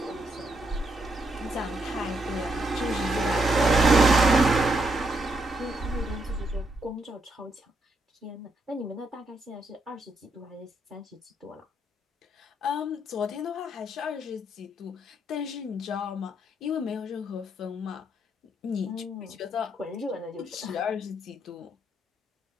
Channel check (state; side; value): normal; both; correlation 0.76